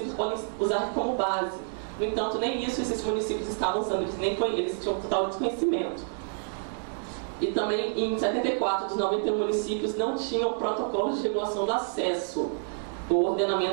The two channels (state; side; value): silent; left; digital silence